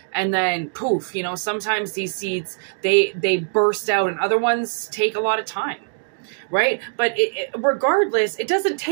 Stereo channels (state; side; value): silent; left; digital silence